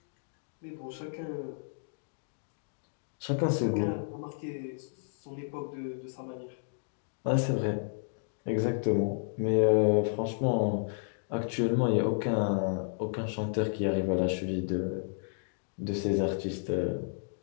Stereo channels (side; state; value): right; silent; digital silence